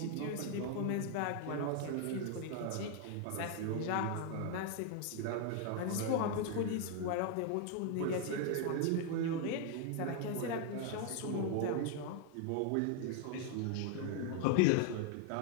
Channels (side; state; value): both; different; correlation 0.01